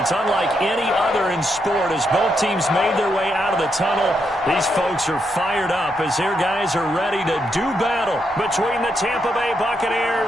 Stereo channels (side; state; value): both; normal; correlation 0.80